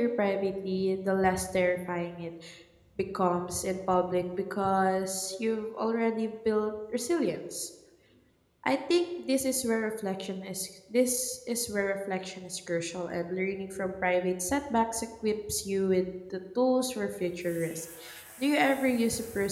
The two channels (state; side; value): identical; both; correlation 1.00